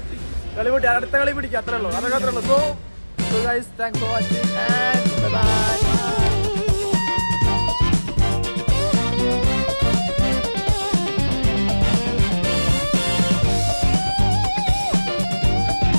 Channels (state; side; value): inverted; both; correlation -1.00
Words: കളി പൊട്ടി, അടുത്ത കളി പിടിക്കുക, അത്രേ ഉള്ളൂ. അതൊക്കെ അത്രേ ഉള്ളൂ. So guys, thanks for watching and by.